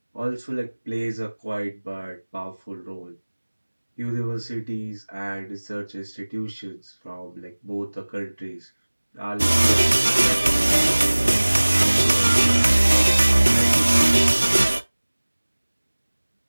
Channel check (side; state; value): both; inverted; correlation -1.00